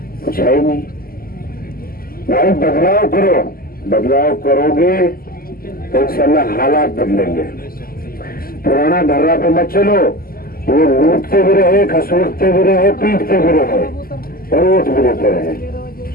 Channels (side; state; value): right; late; 0.42 ms